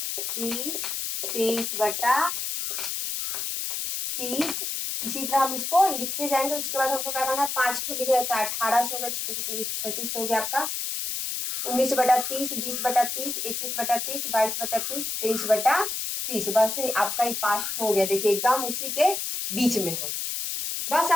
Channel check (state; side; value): noise; left; hiss, 3 dB below the sound